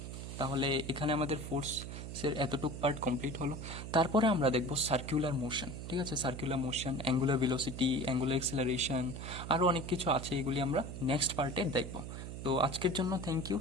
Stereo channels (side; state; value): right; noise; hum, 8 dB below the sound